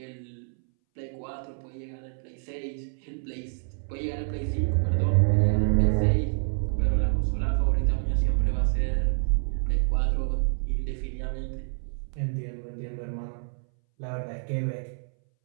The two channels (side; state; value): left; silent; 60 dB below the other